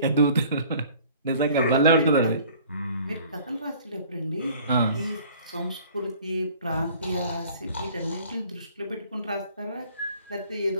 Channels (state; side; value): inverted; both; correlation -0.51